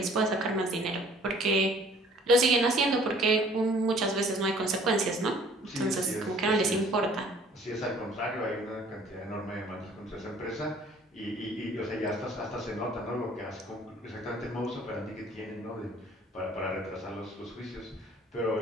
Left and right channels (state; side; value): normal; both; correlation 0.55